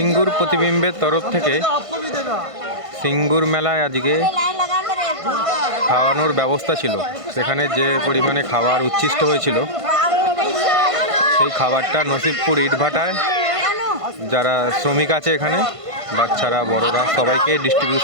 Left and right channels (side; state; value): left; late; 1.5 ms